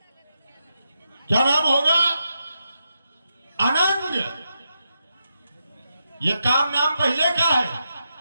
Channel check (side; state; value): both; inverted; correlation -0.85